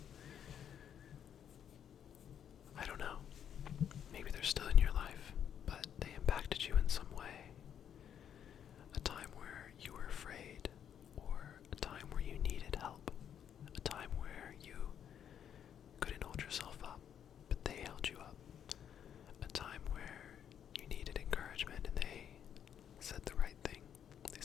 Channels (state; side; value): quieter; right; 9.0 dB